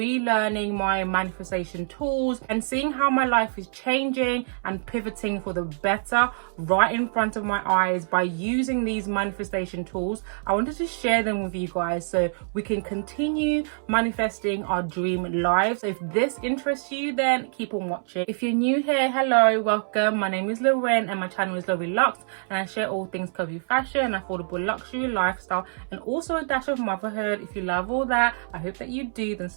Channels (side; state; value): left; silent; 61 dB below the other